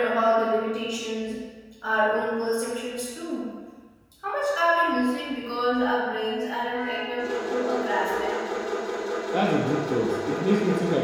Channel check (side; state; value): both; identical; correlation 1.00